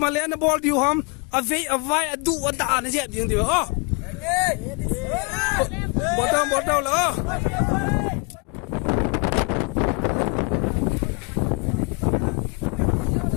ma le na ball diu ham a vai a du a da na je ding diu oh bot down la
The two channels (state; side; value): quieter; right; 33.0 dB